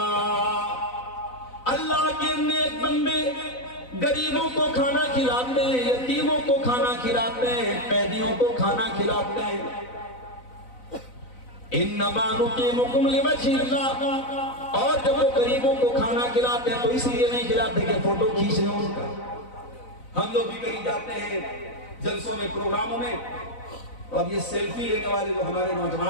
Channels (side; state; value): right; late; 4.0 ms